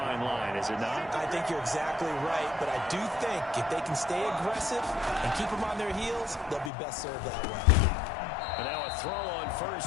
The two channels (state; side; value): drops out; right; at 6.7 s